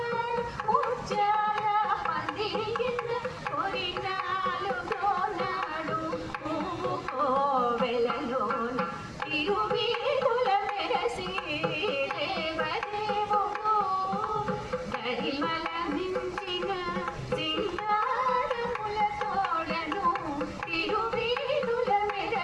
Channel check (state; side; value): identical; both; correlation 1.00